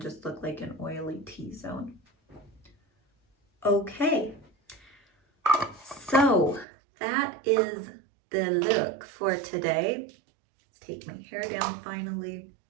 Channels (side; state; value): left; drops out; at 6.7 s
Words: just look like an oily T-zone. Okay, so that is the look for today. Let's take my hair down finally.